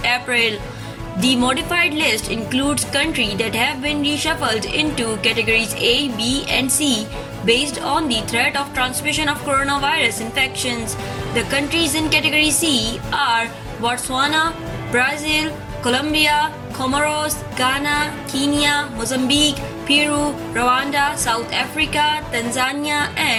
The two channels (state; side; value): identical; both; correlation 1.00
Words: April. The modified list includes countries that have been reshuffled into categories A, B, and C based on the threat of transmission of coronavirus infections. The countries in category C are Botswana, Brazil, Colombia, Comoros, Ghana, Kenya, Mozambique, Peru, Rwanda, South Africa, Tanzania,